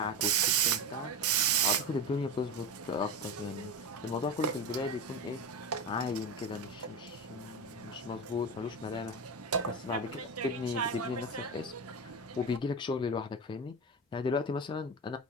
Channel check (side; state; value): both; normal; correlation 0.21